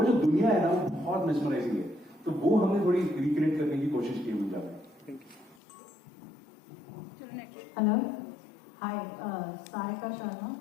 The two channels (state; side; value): drops out; right; at 5.6 s